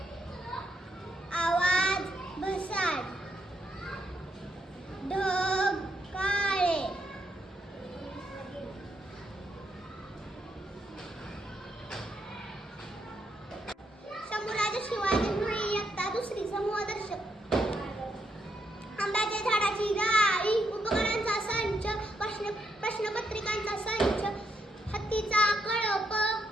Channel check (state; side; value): normal; both; correlation 0.78